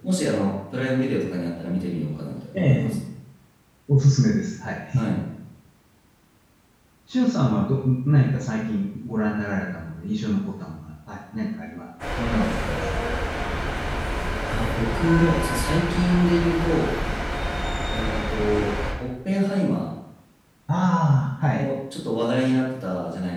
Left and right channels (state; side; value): identical; both; correlation 1.00